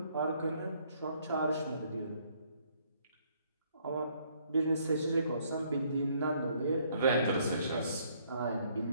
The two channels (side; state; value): both; inverted; correlation -0.66